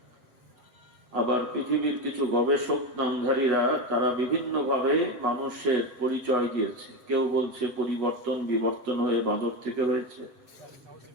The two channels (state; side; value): late; left; 8.2 ms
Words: আবার পৃথিবীর কিছু গবেষক নামধারীরা তারা বিভিন্ন ভাবে মানুষের পরিচয় দিয়েছে কেউ বলছে পরিবর্তন বিবর্তন হয়ে বাঁদর থেকে হয়েছে